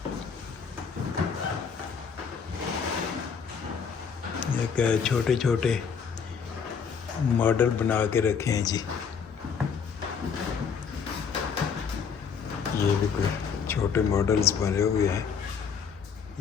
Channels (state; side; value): quieter; right; 6.4 dB